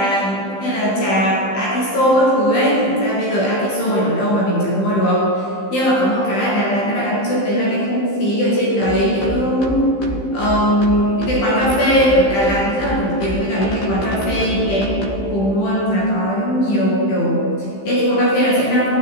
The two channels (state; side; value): late; right; 15 ms